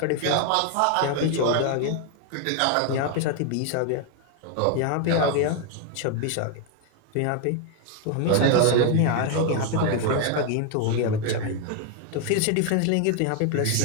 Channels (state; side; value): different; both; correlation 0.01